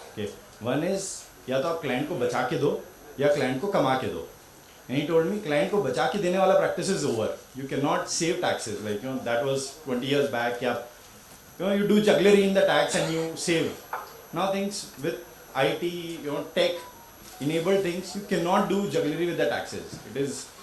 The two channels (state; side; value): identical; both; correlation 1.00